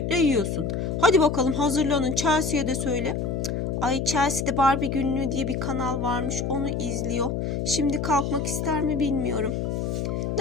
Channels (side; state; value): left; noise; hum, 1 dB below the sound